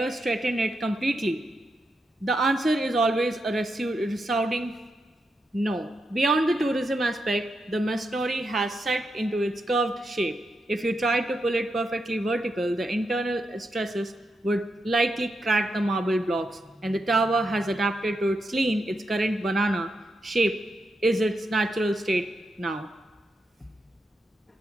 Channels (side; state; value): both; normal; correlation 0.85